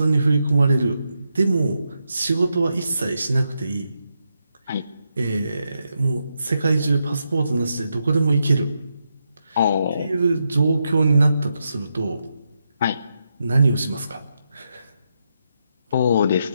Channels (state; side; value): inverted; both; correlation -0.83